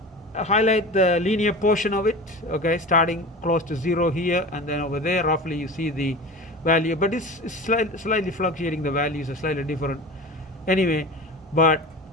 highlight the linear portion of it, okay, starting close to 0 here, and then over there roughly you see the value, but it's slightly fluctuating, the values are slightly different anyway, but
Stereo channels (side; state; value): both; normal; correlation 0.32